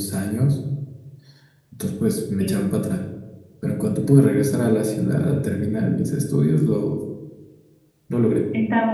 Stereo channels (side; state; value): both; identical; correlation 1.00